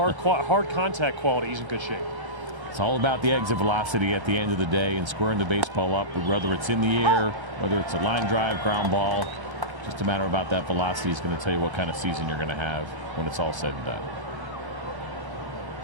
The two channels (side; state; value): left; late; 1.3 ms